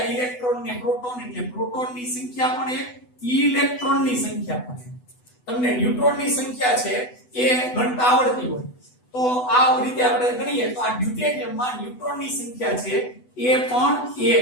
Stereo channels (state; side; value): late; right; 8.0 ms